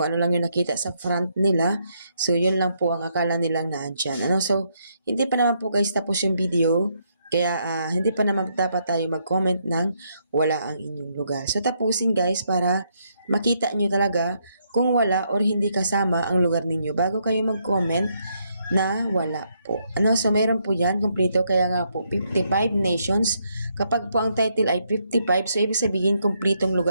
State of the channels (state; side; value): inverted; both; correlation -0.75